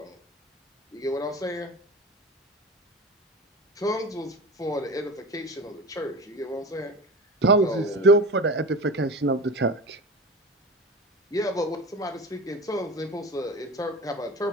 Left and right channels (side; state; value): both; normal; correlation 0.31